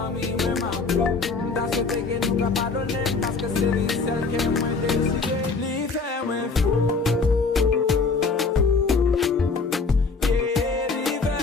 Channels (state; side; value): quieter; right; 4.3 dB